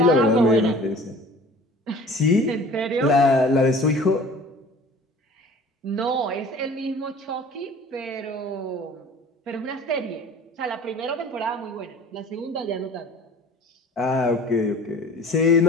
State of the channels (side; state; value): both; normal; correlation 0.45